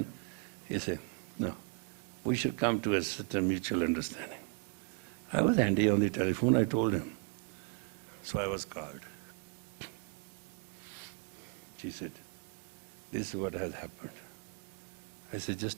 he said, no, we should come to a certain mutual understanding. I was handy on the telephone, I told him. So I was called. She said, this is what has happened. I said,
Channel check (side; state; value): left; quieter; 33.4 dB